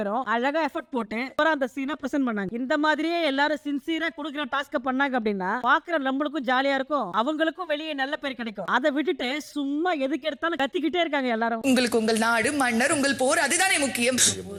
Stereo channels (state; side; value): identical; both; correlation 1.00